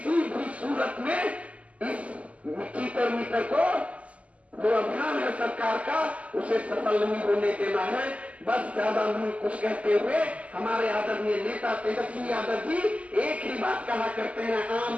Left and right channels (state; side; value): late; left; 0.066 ms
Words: भी सूरत में इस चीटर मीटर को जो अभियान है सरकार का उसे सफल नहीं होने देना है। बस ज्यादा नहीं कुछ कहते हुए हमारे आदरणीय नेता तेजस्वी यादव जी एक ही बात कहा करते हैं, आम